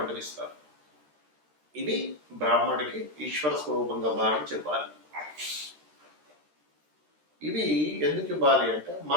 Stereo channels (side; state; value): left; late; 13 ms